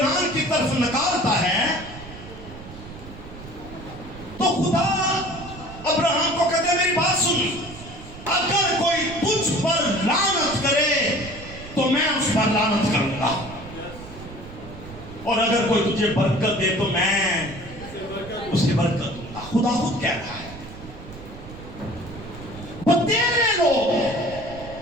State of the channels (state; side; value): noise; right; rumble, 15 dB below the sound